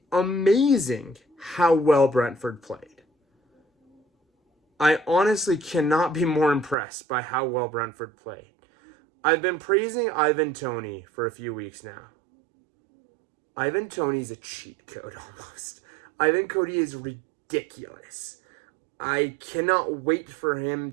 amazing how well Brentford played. I honestly cannot be more impressed by how well Brentford played. I've been praising Ivan Toney for a few weeks now. Ivan Toney's a cheat code almost. Ivan Toney is ridiculous. I cannot wait for him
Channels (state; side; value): drops out; left; at 6.8 s